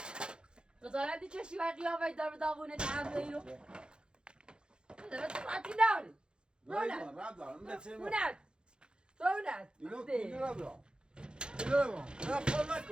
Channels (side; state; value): left; late; 0.050 ms